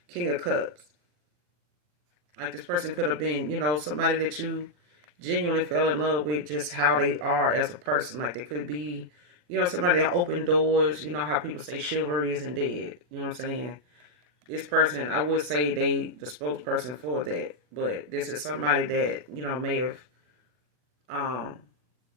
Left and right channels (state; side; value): late; left; 40 ms